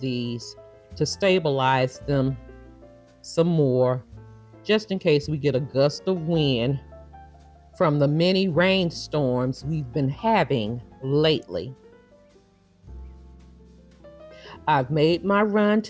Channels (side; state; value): both; identical; correlation 1.00